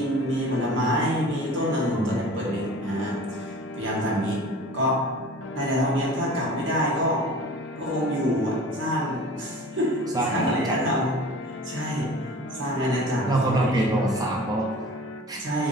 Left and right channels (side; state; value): both; normal; correlation 0.42